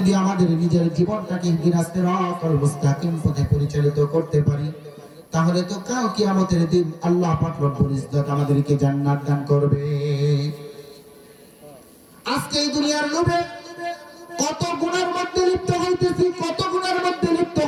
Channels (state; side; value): identical; both; correlation 1.00